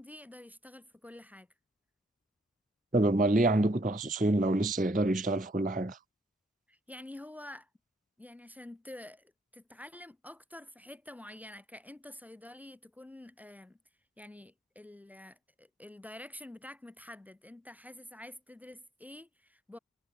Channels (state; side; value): normal; both; correlation 0.68